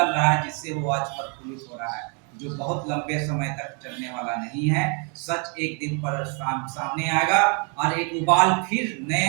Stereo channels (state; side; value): quieter; left; 37.3 dB